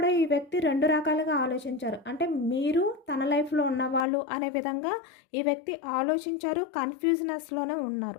ఈ వ్యక్తి 2 రకాలుగా ఆలోచించారు. అంటే మీరు తన లైఫ్లో ఉన్నవాళ్ళు అనే విధంగా ఈ వ్యక్తి ఆలోచించారు, కన్ఫ్యూజనెస్లోనే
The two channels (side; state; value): right; drops out; at 4.0 s